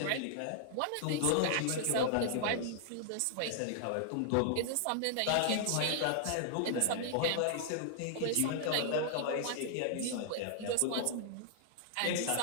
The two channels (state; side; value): different; both; correlation -0.01